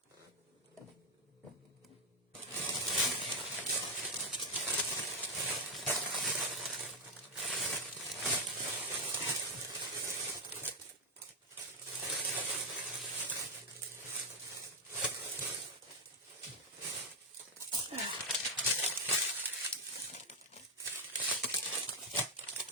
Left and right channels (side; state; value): both; normal; correlation 0.04